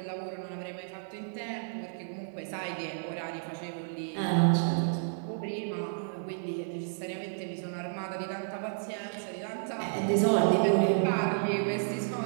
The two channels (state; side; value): silent; left; digital silence